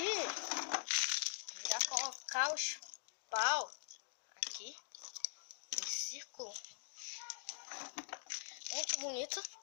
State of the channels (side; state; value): right; silent; digital silence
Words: Já colocar os pau aqui em círculo. Muito bonito.